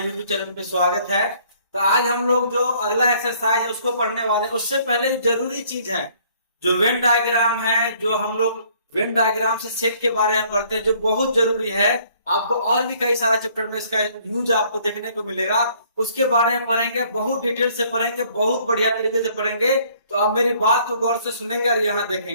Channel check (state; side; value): inverted; both; correlation -0.61